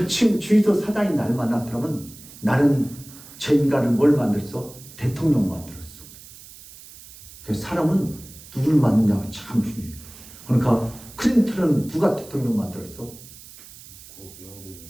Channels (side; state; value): right; noise; hiss, 19 dB below the sound